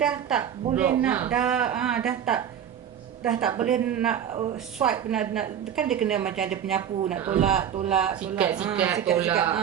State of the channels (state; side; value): quieter; left; 9.2 dB